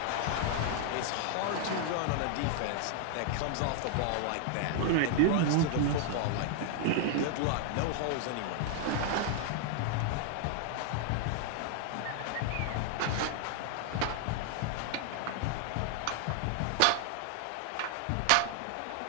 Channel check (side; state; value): both; different; correlation 0.00